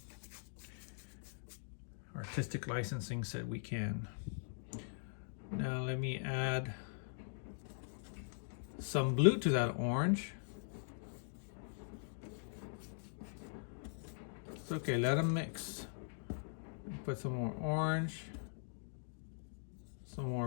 Artistic licensing said we can. Now let me add some blue to that orange. It's okay, let them mix. Put some more orange, some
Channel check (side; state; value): right; silent; digital silence